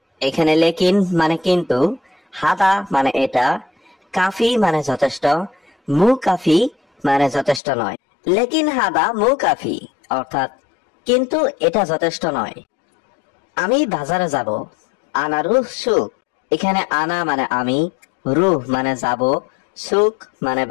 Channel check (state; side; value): drops out; right; at 7.6 s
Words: এখানে লেকিন মানে কিন্তু, হাদা মানে এটা, কাফি মানে যথেষ্ট, মু কাফি মানে যথেষ্ট নয়। লেকিন হাদা মু কাফি অর্থাৎ কিন্তু এটা যথেষ্ট নয়। আমি বাজারে যাব। আনা রুহ সুক। এখানে আনা মানে আমি, রুহ মানে যাব, সুক মানে